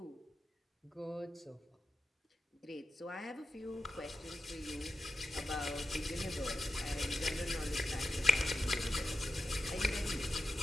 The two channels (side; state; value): both; normal; correlation 0.91